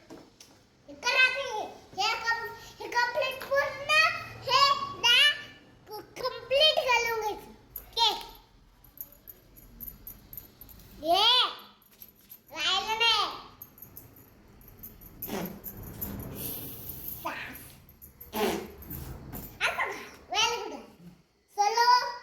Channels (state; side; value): identical; both; correlation 1.00